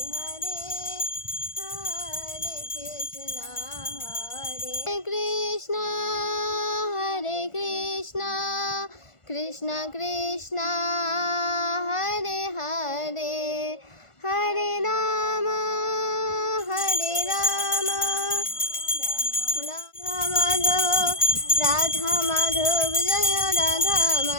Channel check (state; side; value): late; right; 1.5 ms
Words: হরে, হরে কৃষ্ণ হরে কৃষ্ণ, হরে কৃষ্ণ কৃষ্ণ কৃষ্ণ হরে হরে, হরে রাম হরে রাধা মাধব জয় রাধা